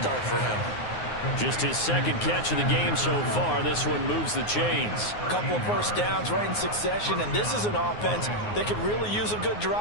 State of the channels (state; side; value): late; right; 9.6 ms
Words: for him. Just his second catch of the game so far. This one moves the chains. A couple of first downs right in succession, and this is an offense that could really use a good